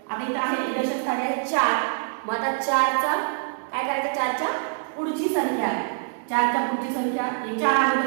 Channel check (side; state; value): left; silent; digital silence